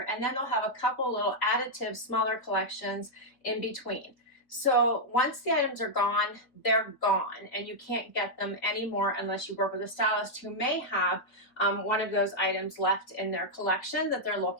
and then they'll have a couple little additive smaller collections in between. So once the items are gone, they're gone, and you can't get them anymore unless you work with a stylist who may have one of those items left in their collection that they're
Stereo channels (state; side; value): late; right; 4.1 ms